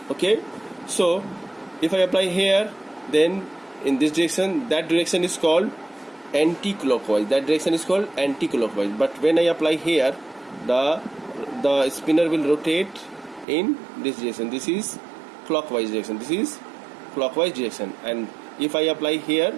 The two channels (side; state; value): left; drops out; at 13.5 s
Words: Okay, so if I apply here, then in this direction, that direction is called anti-clockwise. But when I apply here, the spinner will rotate in this direction. This is clockwise direction. And if I apply here